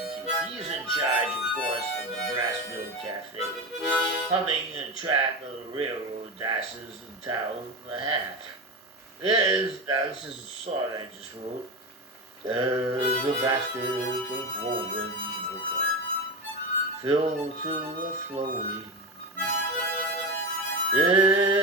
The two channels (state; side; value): normal; both; correlation 0.21